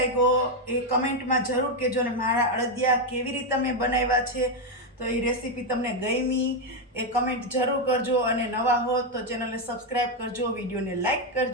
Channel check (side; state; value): both; normal; correlation 0.04